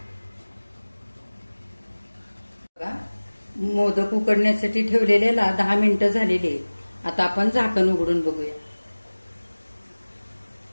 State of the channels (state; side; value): inverted; both; correlation -1.00